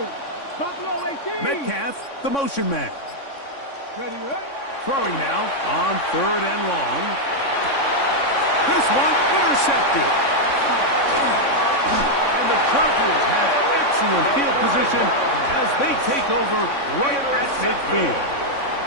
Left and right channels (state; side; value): late; right; 3.6 ms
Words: Buffalo 18. Metcalf, the motion man. Ready, ready. Throwing now on 3rd and long. This one intercepted. And the Chargers have excellent field position as they take over right at midfield.